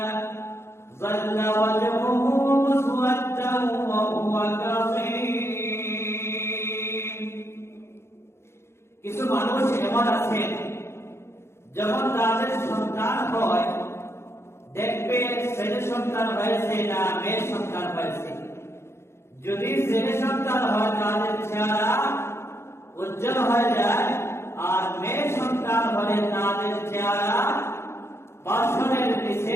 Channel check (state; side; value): late; right; 0.13 ms